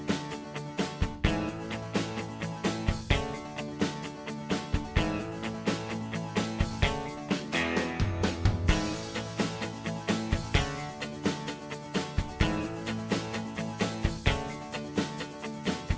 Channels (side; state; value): both; identical; correlation 1.00